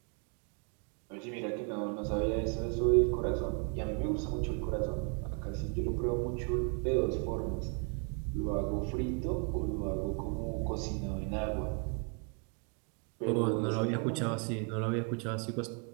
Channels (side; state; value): left; quieter; 38.3 dB